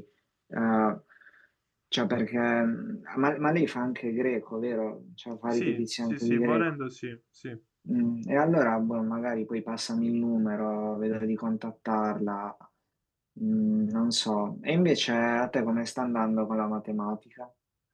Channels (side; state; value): both; identical; correlation 1.00